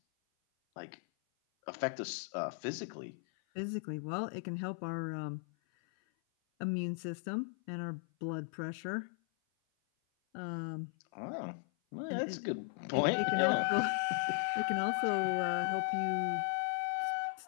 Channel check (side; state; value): right; silent; 53 dB below the other